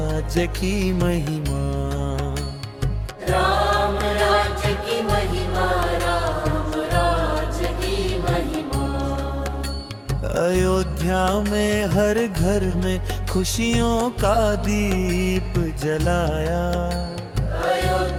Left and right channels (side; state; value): both; identical; correlation 1.00